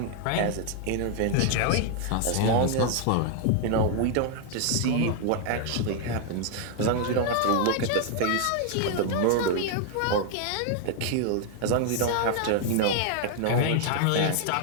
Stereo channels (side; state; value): both; different; correlation 0.00